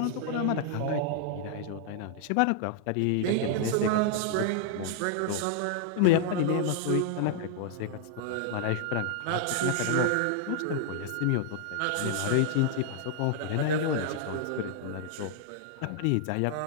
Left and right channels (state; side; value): different; both; correlation 0.00